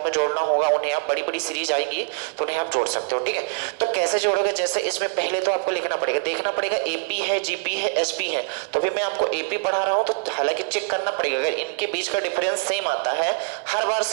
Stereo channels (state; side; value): silent; left; digital silence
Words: में जोड़ना होगा, उन्हें आप बड़ी बड़ी सीरीज आएंगी तो उन्हें आप जोड़ सकते हो। ठीक है, तो कैसे जोड़ोगे? जैसे इसमें पहले तो आपको लिखना पड़ेगा, देखना पड़ेगा एपी है, जीपी है, एसपी है। तो अभी मैं आपको एपी पढ़ा रहा हूं तो हालांकि चेक करना पड़ेगा, अगर इनके बीच का डिफरेंस सेम आता है, हर बार